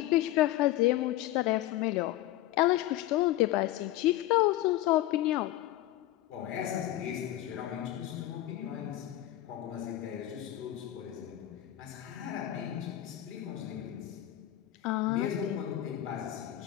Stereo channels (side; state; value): right; quieter; 14.4 dB